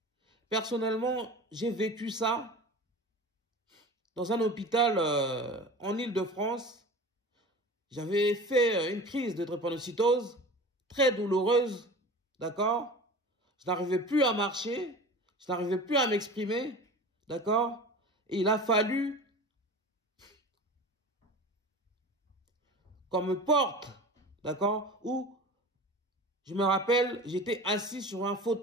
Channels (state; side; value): normal; both; correlation 0.36